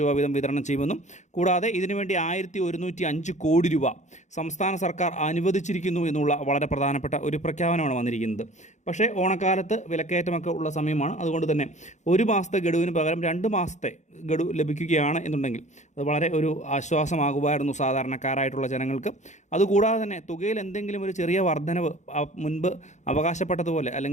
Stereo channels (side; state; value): right; late; 0.34 ms